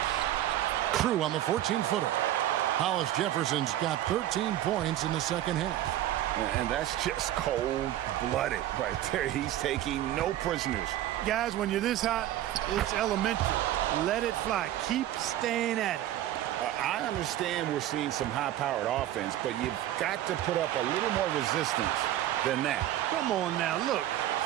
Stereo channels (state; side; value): quieter; left; 13.1 dB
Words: True on the 14-footer. Hollis Jefferson's got 13 points in the second half. And that's just cold-blooded right there. He's taking no prisoners. Guys, when you're this hot, it's elementary. Let it fly. Keep staying at it. I understand we're seeing some high-powered offense, but you've got to put up a little more resistance than that. Come on now, look.